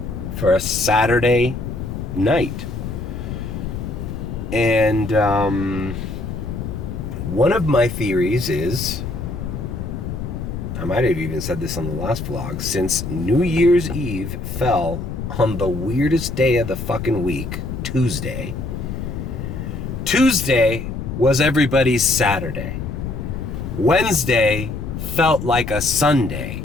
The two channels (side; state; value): left; noise; rumble, 6 dB below the sound